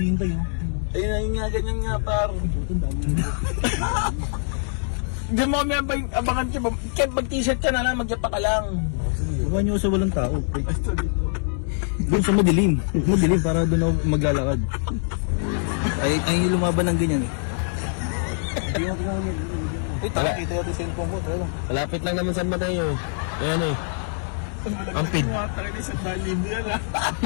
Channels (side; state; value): right; silent; digital silence